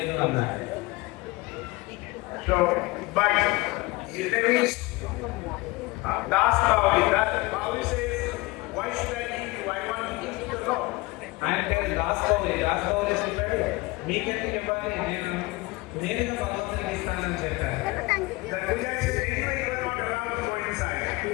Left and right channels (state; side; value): quieter; right; 22.2 dB